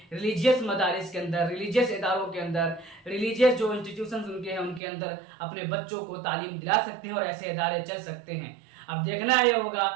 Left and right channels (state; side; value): drops out; left; at 4.8 s